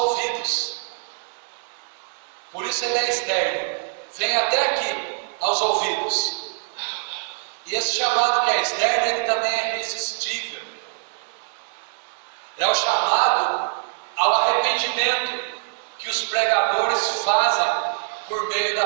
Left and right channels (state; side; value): silent; left; 63 dB below the other